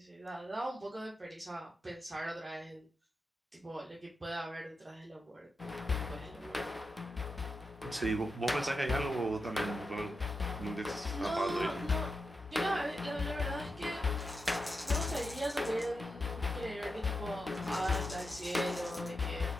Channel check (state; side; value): normal; both; correlation 0.88